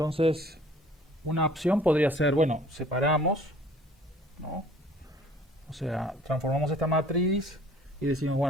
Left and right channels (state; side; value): normal; both; correlation 0.53